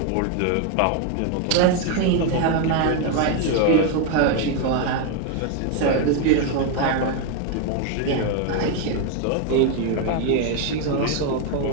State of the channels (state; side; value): different; both; correlation 0.01